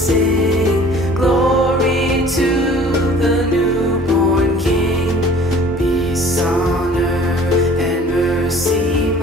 sing, glory to the newborn King. Peace on earth and mercy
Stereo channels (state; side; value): normal; both; correlation 0.49